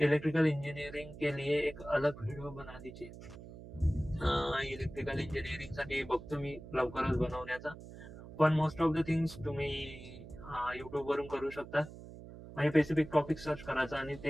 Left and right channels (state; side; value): noise; right; hum, 15 dB below the sound